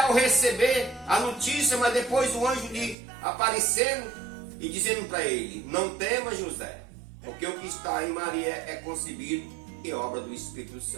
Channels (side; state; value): left; drops out; at 3.0 s